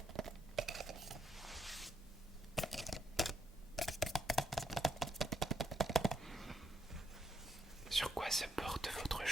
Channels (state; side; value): normal; both; correlation 0.78